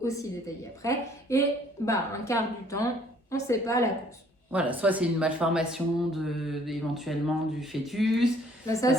aussi détailler après. Et 1/4 du temps, on ne sait pas la cause. Voilà, soit c'est une malformation éventuellement du fœtus. Ça,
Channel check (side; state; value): both; normal; correlation 0.60